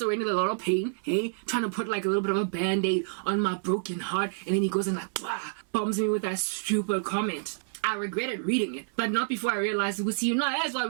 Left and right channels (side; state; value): left; silent; digital silence